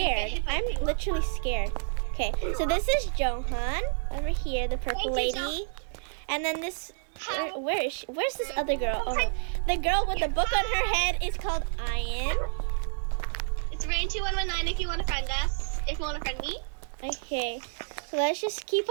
I'm literally scared. Okay, so this is Johan over here, the purple lady. And then this, where is she? Where's this other girl? Oh, the girl with the book on her head is called Ian. It's Rain2119 if you want to friend us. If you want to friend me. Okay, so let's just keep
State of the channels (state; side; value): silent; left; digital silence